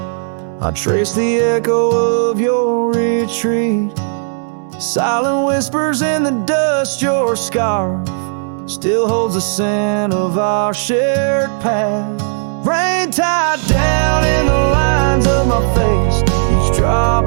I trace the echo of your retreat. Silent whispers in the dust, your scarf still holds the scent of our shared path. Rain tied down in the lines of my face, each drop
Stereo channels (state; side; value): silent; left; digital silence